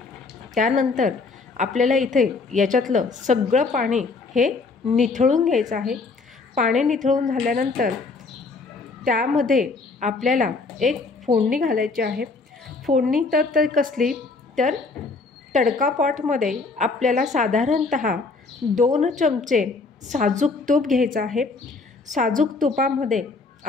त्यानंतर आपल्याला इथे याच्यातलं सगळं पाणी हे निथळून घ्यायचं आहे. पाणी निथळून झाल्यानंतर त्यामध्ये आपल्याला एक फोडणी घालायची आहे. फोडणी तर कसली, तर तडका पॉटमध्ये आपल्याला साधारणतः 2 चमचे साजूक तूप घ्यायचं आहे. साजूक तुपामध्ये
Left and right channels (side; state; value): right; quieter; 4.0 dB